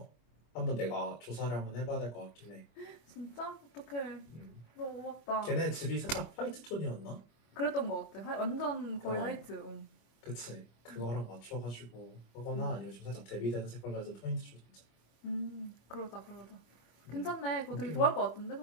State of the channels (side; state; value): right; late; 25 ms